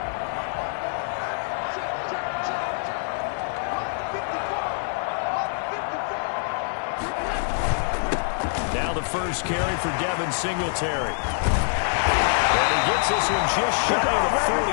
Now the first carry for Devin Singletary. And he gets this one just shy of the 40,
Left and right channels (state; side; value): silent; right; 62 dB below the other